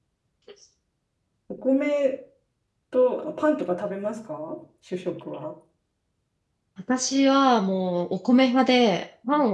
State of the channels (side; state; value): both; identical; correlation 1.00